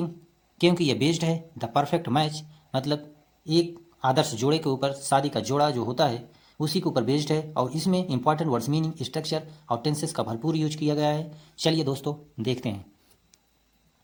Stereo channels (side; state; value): both; identical; correlation 1.00